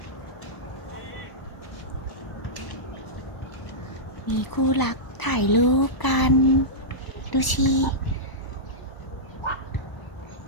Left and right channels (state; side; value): late; right; 1.1 ms